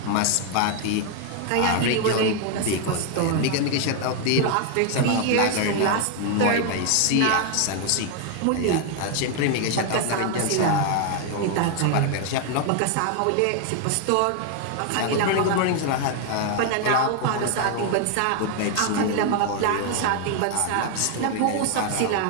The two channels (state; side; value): different; both; correlation 0.01